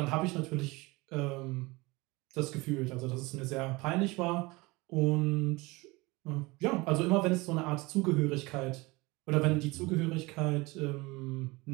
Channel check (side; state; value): left; quieter; 23.4 dB